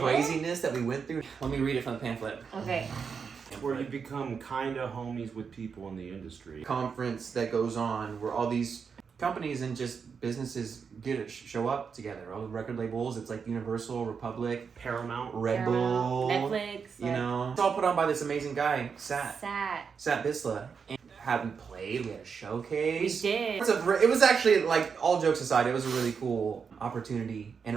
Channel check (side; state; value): left; quieter; 6.0 dB